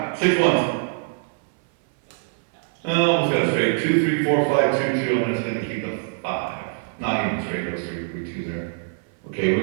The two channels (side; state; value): left; silent; 59 dB below the other